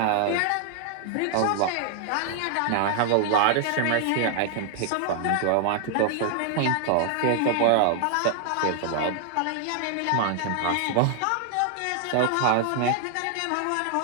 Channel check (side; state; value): both; different; correlation 0.00